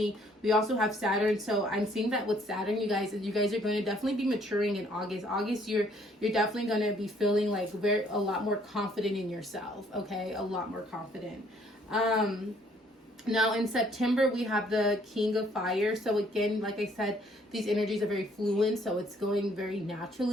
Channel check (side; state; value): both; normal; correlation 0.63